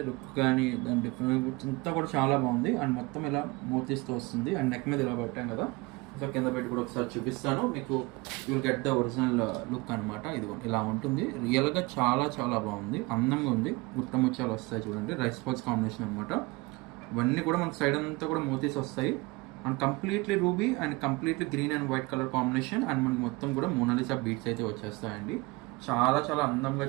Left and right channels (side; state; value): left; quieter; 24.2 dB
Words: లుక్ కానీ దాని డిఫరెంట్ అంతా కూడా చాలా బాగుంది. అండ్ మొత్తం ఇలా మోతీస్తో వస్తుంది. అండ్ నెక్ మీద ఇలా పెట్టాం కదా, సో కింద పెట్టి కూడా ఒకసారి చూపిస్తాను మీకు. You'll get the original look అనమాట. ఇది ఇలా ఉంటుంది. రియల్గా చాలా చాలా బాగుంది, అందంగా ఉంది. గుట్ట ముత్యాలు వస్తాయి చూడండి, రైస్ బాల్స్ కాంబినేషన్ అనమాట. ఇవన్నీ కూడా మనకి సైడ్ అంతా కూడా మోతీస్ వస్తాయి. And completely ruby and completely green and white colour combination. And మనకి మొత్తం కూడా మోనాలిసా బీట్స్ అయితే వచ్చేస్తాయండి. చాలా చాలా అందంగా,